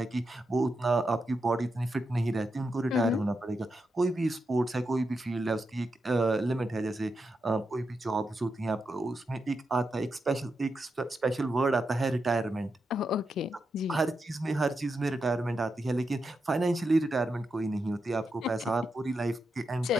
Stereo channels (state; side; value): normal; both; correlation 0.86